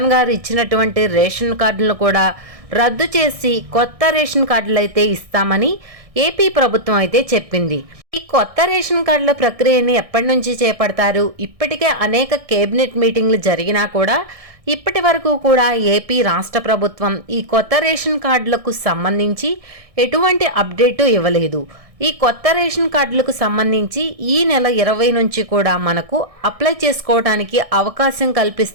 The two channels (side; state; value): left; late; 1.6 ms